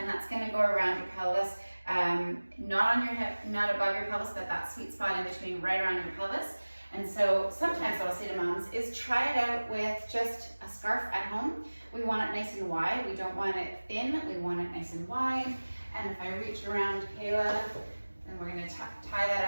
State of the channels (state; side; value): inverted; both; correlation -1.00